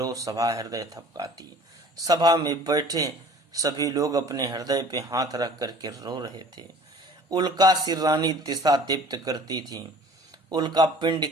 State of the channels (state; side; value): normal; both; correlation 0.48